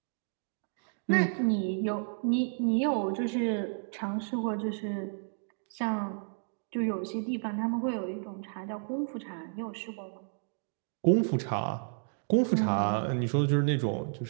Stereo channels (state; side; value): silent; left; digital silence